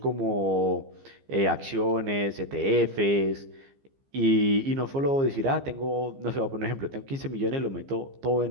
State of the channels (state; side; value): late; left; 15 ms